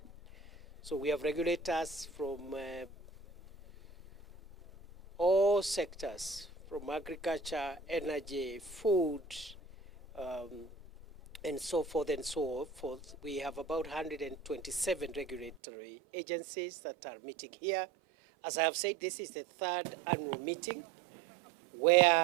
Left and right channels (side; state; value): left; drops out; at 15.6 s